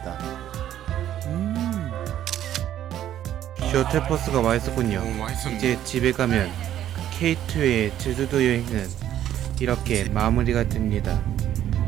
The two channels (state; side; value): quieter; left; 11.5 dB